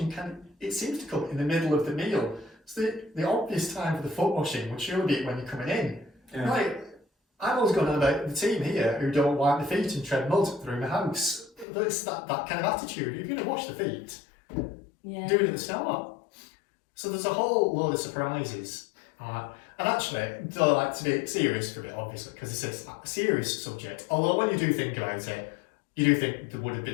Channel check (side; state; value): right; drops out; at 11.7 s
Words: it seems to come in the middle of the meal. So the obvious time for the foot washing would surely be when you're coming in. Yeah. Like, I've always gone on about the team here who don't wipe their feet and tread mud through the house. It's that kind of attitude. If you're going to wash the feet, do it at the start. So there's a whole load of surprises. And actually, though I like to be serious for a bit, obviously, because it's a serious subject. Although when you do think about it, you do think there would have